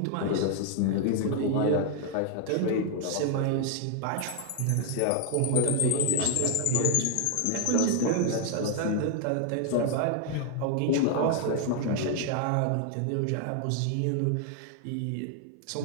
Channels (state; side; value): different; both; correlation 0.00